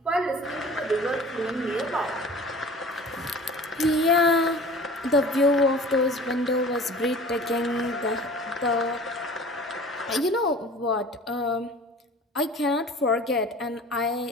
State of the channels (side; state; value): both; normal; correlation 0.43